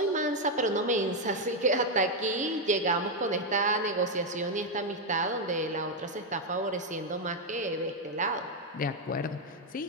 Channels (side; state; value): both; normal; correlation 0.03